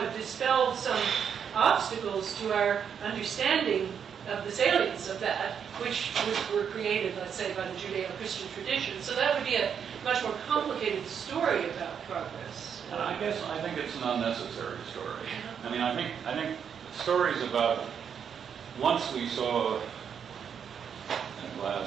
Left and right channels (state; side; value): quieter; left; 7.6 dB